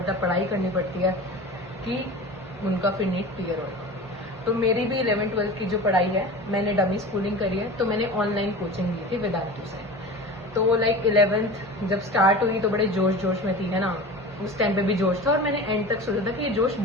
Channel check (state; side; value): normal; both; correlation 0.34